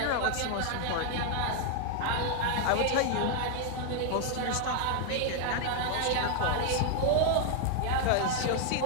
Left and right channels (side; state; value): both; different; correlation 0.00